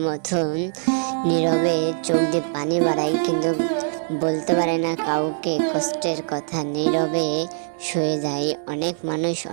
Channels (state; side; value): silent; left; 63 dB below the other